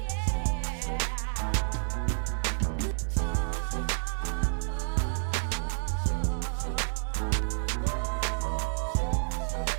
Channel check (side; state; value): left; silent; digital silence